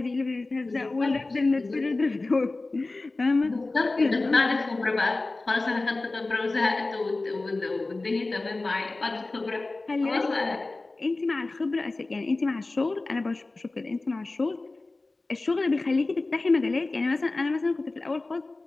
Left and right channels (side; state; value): right; quieter; 3.2 dB